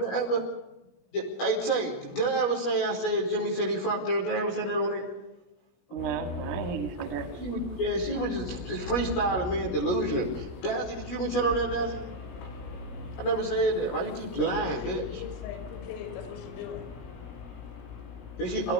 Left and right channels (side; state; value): right; late; 16 ms